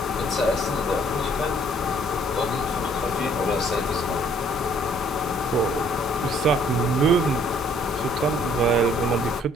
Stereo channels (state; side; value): normal; both; correlation 0.61